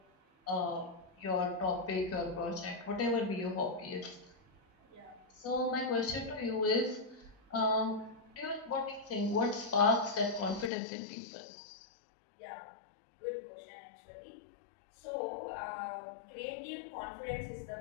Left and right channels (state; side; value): drops out; right; at 10.7 s